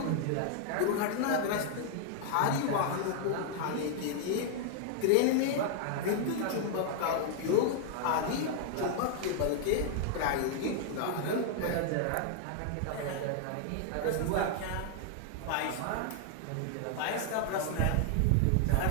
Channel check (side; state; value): both; different; correlation 0.00